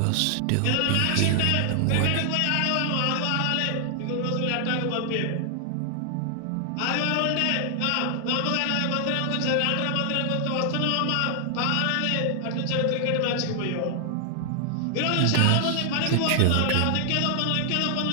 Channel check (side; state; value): both; different; correlation 0.00